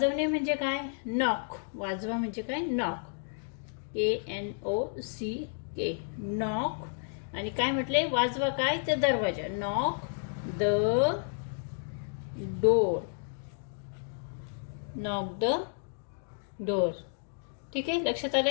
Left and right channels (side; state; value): right; silent; digital silence